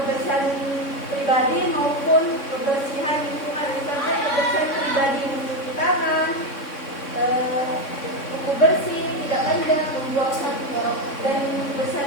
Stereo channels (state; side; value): late; right; 3.6 ms